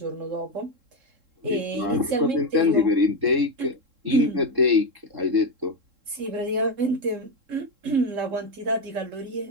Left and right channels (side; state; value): left; late; 3.7 ms